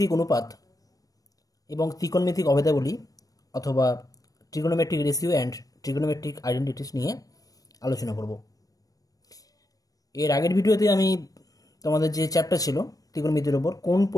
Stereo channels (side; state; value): right; late; 0.18 ms